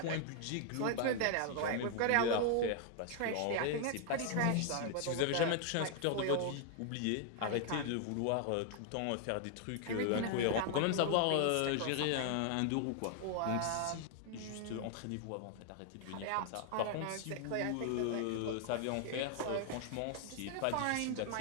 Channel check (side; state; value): both; different; correlation 0.00